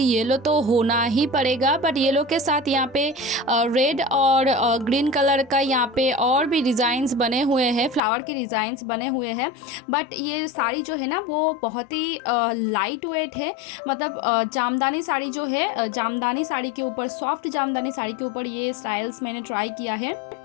येलो तो होना ही पड़ेगा, बट येलो के साथ यहाँ पे रेड और ग्रीन कलर का यहाँ पे और भी डिज़ाइंस बने हुए हैं, फ्लावर के डिज़ाइंस बने हुए हैं। बट ये साड़ी जो है ना वो बहुत ही लाइट वेट है। मतलब जामदानी साड़ी जो है, जामदानी साड़ी के ऊपर, सॉफ्ट जामदानी साड़ी के ऊपर ये स्टाइल्स मैंने ट्राई किया है।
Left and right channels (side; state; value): right; drops out; at 8.0 s